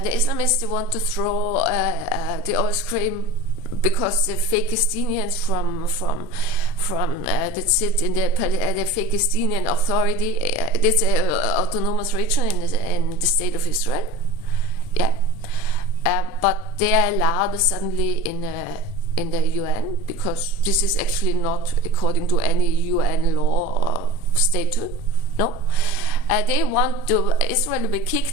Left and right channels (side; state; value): left; late; 1.7 ms